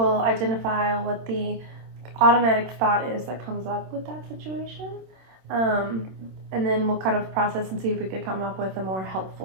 identify what the automatic thought is that comes up with that situation. And then we'll kind of process and see if we could come up with a more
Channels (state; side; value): late; left; 27 ms